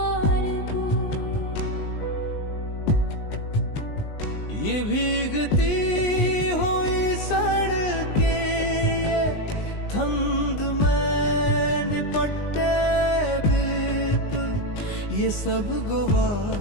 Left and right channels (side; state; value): right; late; 19 ms